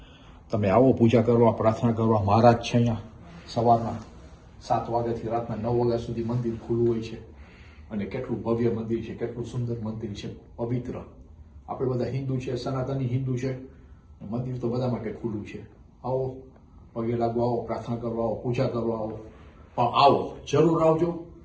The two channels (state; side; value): identical; both; correlation 1.00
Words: તમે આવો પૂજા કરવા, પ્રાર્થના કરવા. મહારાજ છે અહીંયા. સવારના 7 વાગ્યાથી રાતના 9 વાગ્યા સુધી મંદિર ખુલ્લું હોય છે. અને કેટલું ભવ્ય મંદિર છે, કેટલું સુંદર મંદિર છે, પવિત્ર. આપણે બધા હિન્દુ છે, સનાતની હિન્દુ છે. મંદિર તો બધા માટે ખુલ્લું છે. આવો, પગે લાગવા આવો, પ્રાર્થના કરવા આવો, પૂજા કરવા આવો. પણ આવો, જરૂર આવજો.